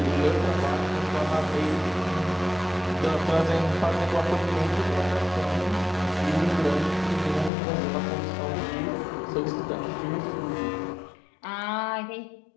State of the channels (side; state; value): right; drops out; at 7.5 s